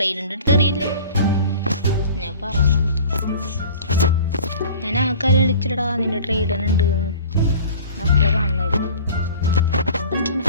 അടുത്ത് അറിയില്ലേ ഞാൻ പറഞ്ഞു. ഞാൻ ആൾക്കാരെ വിളിച്ചിടാ നിന്റെ ട്രെയിഡനുണ്ട് മക്കളെ കാണുന്നായിരുന്നു.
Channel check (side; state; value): both; inverted; correlation -0.43